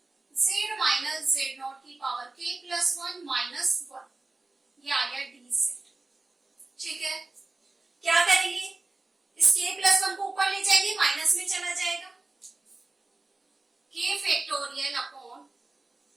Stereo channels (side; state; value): left; quieter; 3.2 dB